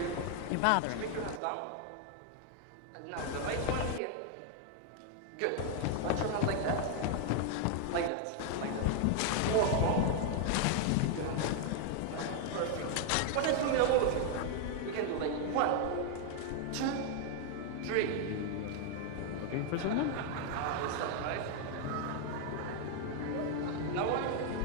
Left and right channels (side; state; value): both; different; correlation 0.00